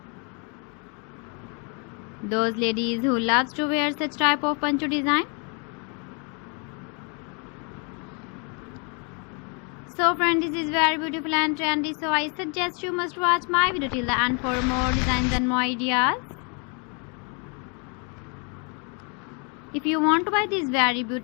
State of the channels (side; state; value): right; quieter; 35.8 dB